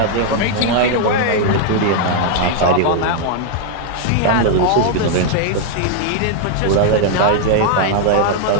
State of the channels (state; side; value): different; both; correlation 0.00